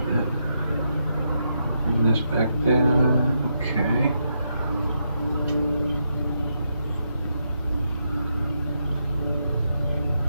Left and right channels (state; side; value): inverted; both; correlation -0.81